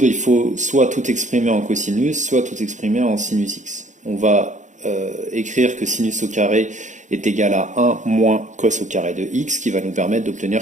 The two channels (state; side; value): late; left; 0.35 ms